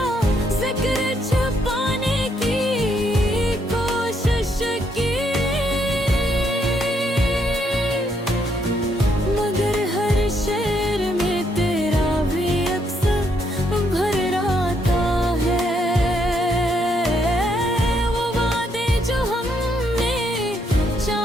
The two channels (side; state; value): both; normal; correlation 0.74